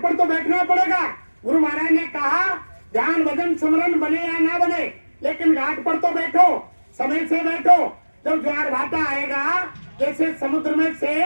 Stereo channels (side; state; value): both; inverted; correlation -1.00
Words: पर तो बैठना पड़ेगा। गुरु महाराज ने कहा ध्यान भजन सुमरन बने या ना बने, लेकिन घाट पर तो बैठो, समय से बैठो। जब ज्वार भाटा आएगा, जैसे समुद्र में से